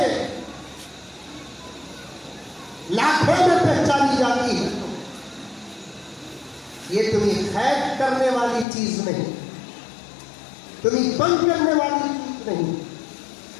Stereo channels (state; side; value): drops out; right; at 8.7 s